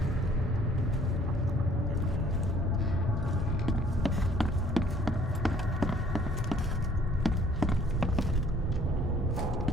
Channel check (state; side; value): normal; both; correlation 0.58